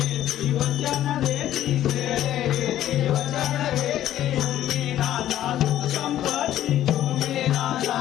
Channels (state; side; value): quieter; right; 12.4 dB